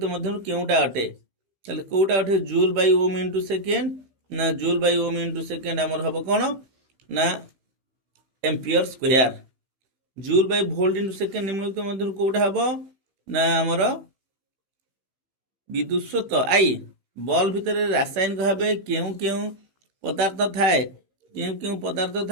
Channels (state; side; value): late; left; 15 ms